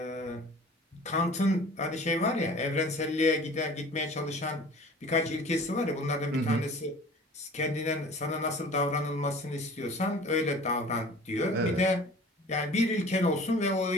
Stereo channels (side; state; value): both; normal; correlation 0.45